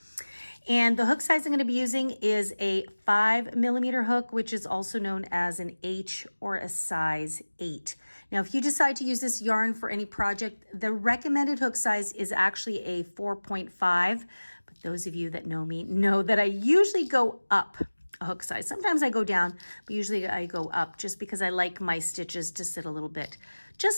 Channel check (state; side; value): inverted; both; correlation -1.00